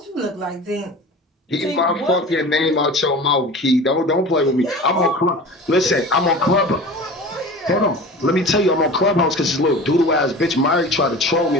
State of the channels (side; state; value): both; normal; correlation 0.37